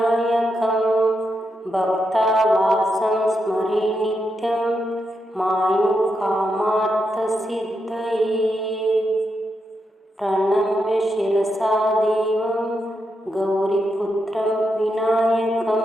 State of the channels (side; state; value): both; normal; correlation 0.84